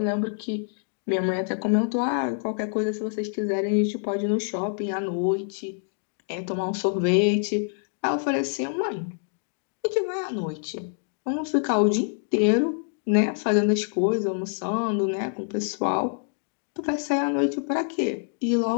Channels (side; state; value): right; silent; 61 dB below the other